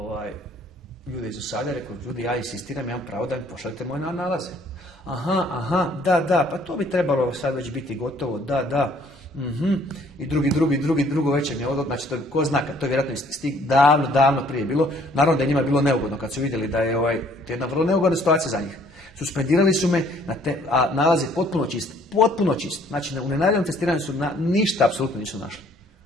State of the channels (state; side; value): normal; both; correlation 0.60